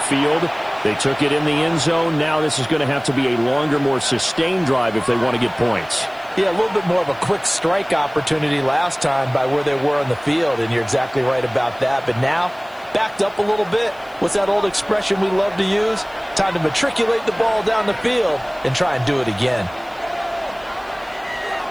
field. They took it in the end zone. Now this is going to have to be a longer, more sustained drive if they want to get points. Yeah, a little bit more of a quick strike opportunity last time by where they were on the field, and you're exactly right about that. But now, backed up a little bit. What's that old expression we love to use? Time to matriculate the ball down the field and try and do it again.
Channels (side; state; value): left; noise; hiss, 29 dB below the sound